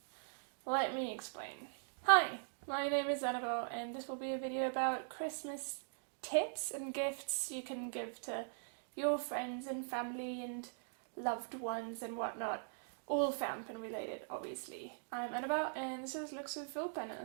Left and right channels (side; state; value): left; silent; digital silence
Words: let me explain. Hi, my name is Annabelle and this will be a video about Christmas tips and gifts you can give to your friends and family and loved ones and whatnot. All fountain related, obviously. I'm Annabelle and this is